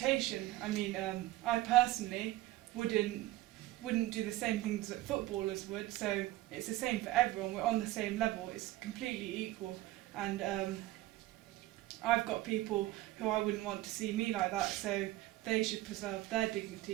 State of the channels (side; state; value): left; quieter; 16.7 dB